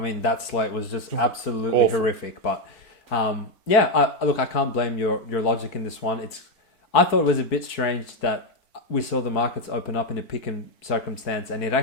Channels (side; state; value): right; late; 4.5 ms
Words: slate was just absolutely horrific. But, I can't blame your logic in this one. I thought it was a bit strange that we saw the markets open up in a pick-and circumstance, and it